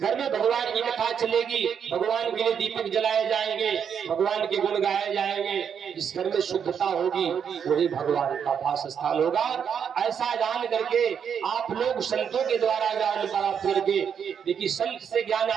में भगवान की कथा चलेगी, भगवान के लिए दीपक जलाए जाएंगे, भगवान के गुण गाए जाएंगे, जिस घर में शुद्धता होगी वही भगवान का वास स्थान होगा। ऐसा जान करके आप लोग संतों के द्वारा ज्ञान प्राप्त करके देखिए, संत से ज्ञान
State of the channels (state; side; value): quieter; left; 7.6 dB